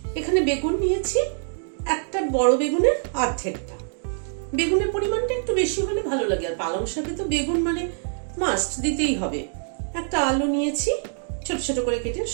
এখানে বেগুন নিয়েছি, একটা বড় বেগুনের অর্ধেকটা। বেগুনের পরিমাণটা একটু বেশি হলে ভালো লাগে, আর পালং শাকে তো বেগুন মানে মাস্ট দিতেই হবে। একটা আলু নিয়েছি ছোট ছোট করে কেটে,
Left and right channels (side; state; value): left; silent; digital silence